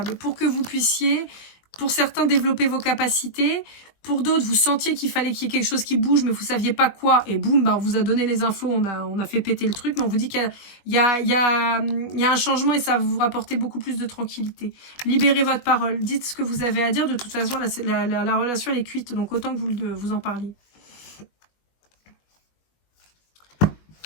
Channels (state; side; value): late; right; 21 ms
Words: pour que vous puissiez, pour certains, développer vos capacités, Pour d'autres, vous sentiez qu'il fallait qu'il y ait quelque chose qui bouge, mais vous saviez pas quoi. Et boum, bah, on vous a donné les infos, on a fait péter le truc. Mais on vous dit qu'il y a un changement et ça va vous rapporter beaucoup plus de tranquillité. Libérez votre parole. Dites ce que vous avez à dire. De toute façon, la relation, elle est cuite. Donc, autant que vous en parliez.